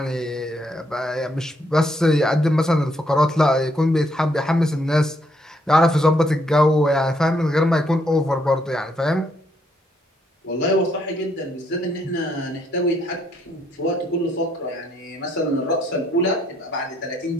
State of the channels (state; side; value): normal; both; correlation 0.72